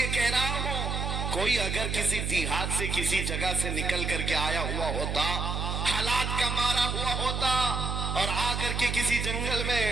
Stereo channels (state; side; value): noise; right; hum, 2 dB below the sound